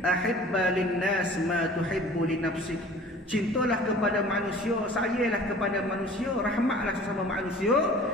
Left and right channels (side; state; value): both; normal; correlation 0.46